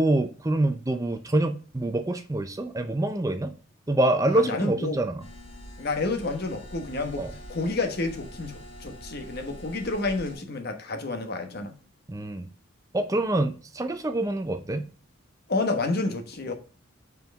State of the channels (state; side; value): normal; both; correlation 0.56